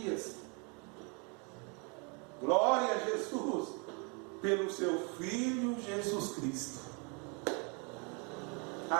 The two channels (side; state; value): left; quieter; 33.8 dB